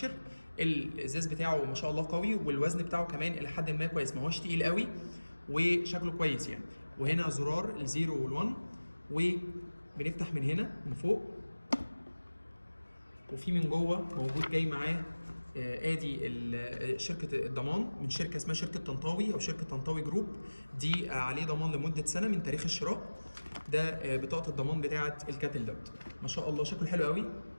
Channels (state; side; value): inverted; both; correlation -1.00